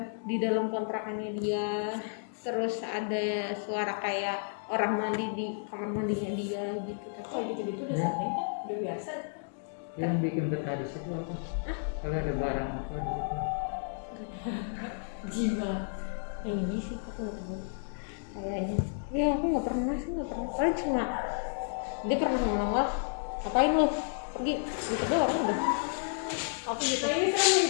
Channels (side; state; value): right; silent; digital silence